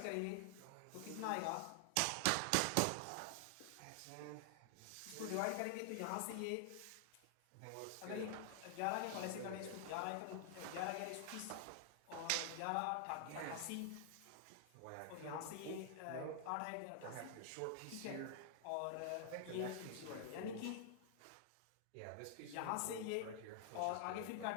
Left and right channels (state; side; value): different; both; correlation 0.00